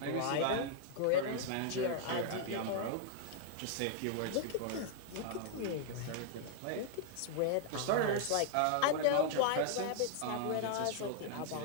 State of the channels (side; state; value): both; different; correlation -0.01